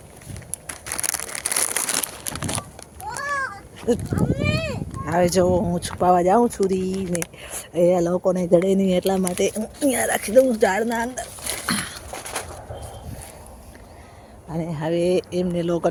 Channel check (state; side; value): identical; both; correlation 1.00